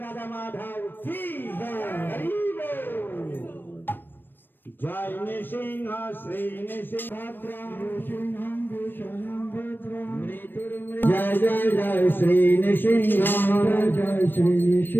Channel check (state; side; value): late; right; 0.095 ms